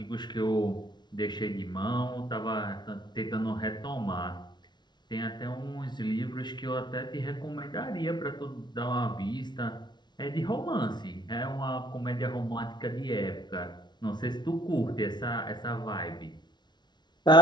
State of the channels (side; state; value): right; late; 0.21 ms